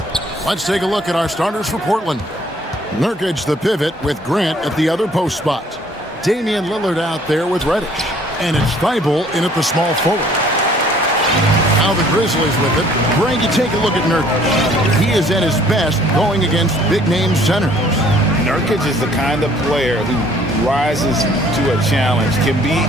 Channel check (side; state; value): both; normal; correlation 0.58